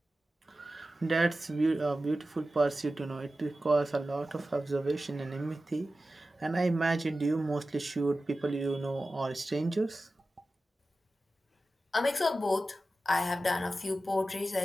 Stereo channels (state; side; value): normal; both; correlation 0.94